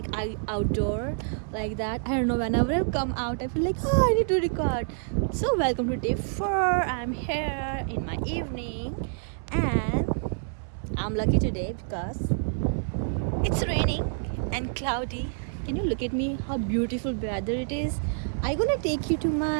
outdoor, like that. I don't know, whenever I come out I feel like, oh, I need to record. So welcome to day 4. I'm here in my evening and I'm lucky today because it's raining and cloudy. Can you look at me, how beautiful weather it is? I'm gonna take you to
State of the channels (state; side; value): silent; left; digital silence